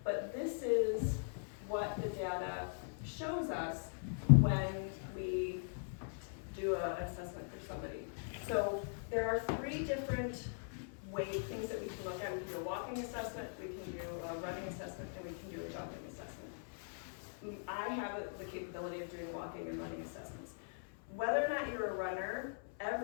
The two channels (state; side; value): silent; right; 51 dB below the other